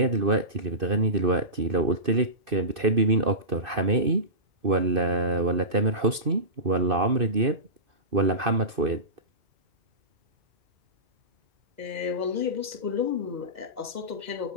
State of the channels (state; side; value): late; left; 2.6 ms